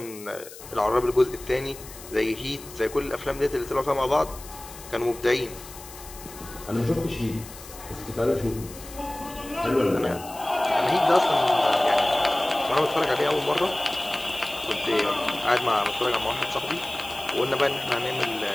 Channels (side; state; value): left; noise; hiss, 16 dB below the sound